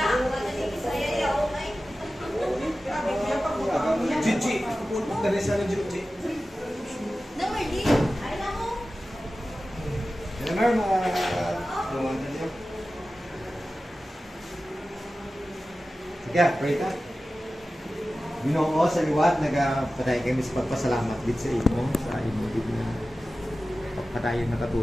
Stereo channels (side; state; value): both; normal; correlation 0.95